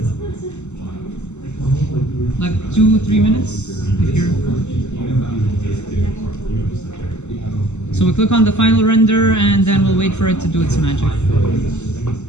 Like 2-3 minutes, if you're... So we'll click on the final render, and then we'll wait for it to do its magic.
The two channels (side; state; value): right; late; 0.83 ms